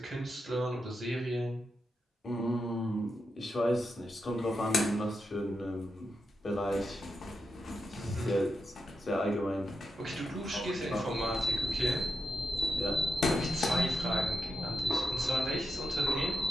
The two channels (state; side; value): normal; both; correlation 0.87